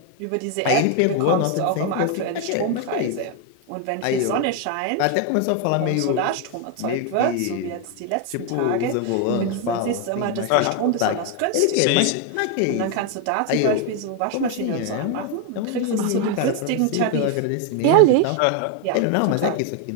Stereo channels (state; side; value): different; both; correlation 0.01